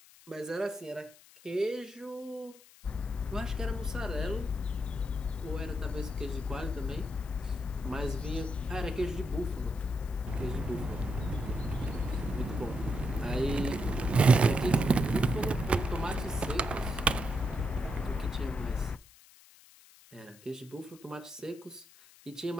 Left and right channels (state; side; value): noise; left; hiss, 24 dB below the sound